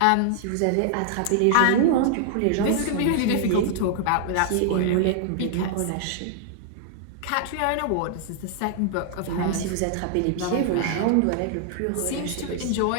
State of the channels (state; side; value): different; both; correlation -0.01